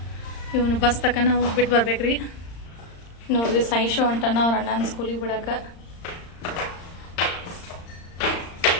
ಇವನು ಬಸ್ ತಕನ ಹೋಗಿ ಬಿಟ್ಟು ಬರ್ಬೇಕ್ರಿ. ನೋಡ್ರಿ, ಸಾಯಿಶು ಹೊಂಟಾನ ಅವ್ರ ಅಣ್ಣನ ಸ್ಕೂಲಿಗೆ ಬಿಡಕ್ಕೆ.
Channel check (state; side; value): late; right; 35 ms